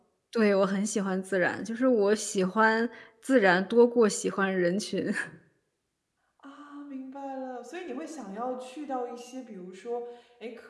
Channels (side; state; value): both; identical; correlation 1.00